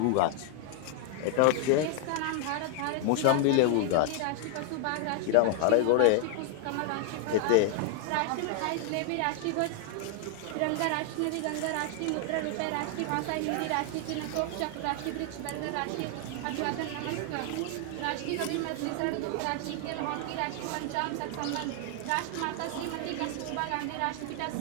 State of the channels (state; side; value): different; both; correlation 0.00